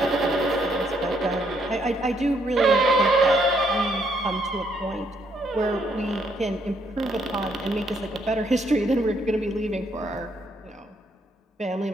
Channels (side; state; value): both; normal; correlation 0.72